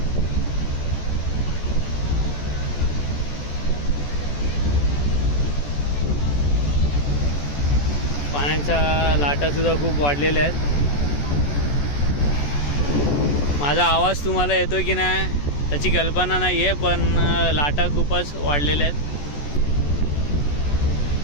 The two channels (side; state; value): right; late; 14 ms